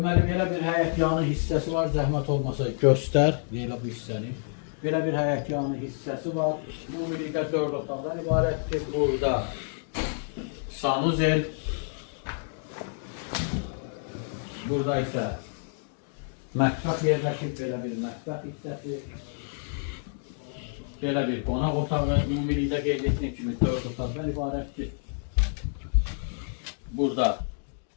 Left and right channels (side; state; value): right; silent; digital silence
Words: belə bir həyətyanı hissəsi var, zəhmət olmasa göstər. Belə bu hissəni. Belə bir həyətyanı hissəsi var. Ümumilikdə 4 otaqdan ibarətdir. Burada sanuzel. Burada isə mətbəx yerləşib, belə bir mətbəx hissəsi. Belə bir qonaq otağı, ümumilikdə qeyd etdiyim kimi 4 otaqdan ibarətdir. Burada